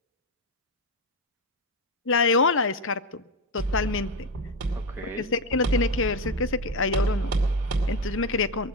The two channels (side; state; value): both; normal; correlation 0.13